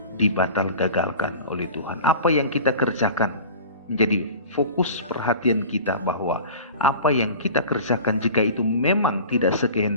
gagalkan oleh Tuhan. Apa yang kita kerjakan menjadi fokus perhatian kita, bahwa apa yang kita kerjakan jika itu memang tidak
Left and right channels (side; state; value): both; inverted; correlation -0.38